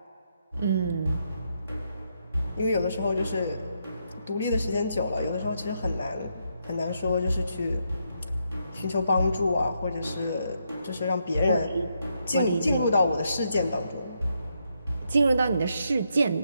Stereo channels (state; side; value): inverted; both; correlation -0.79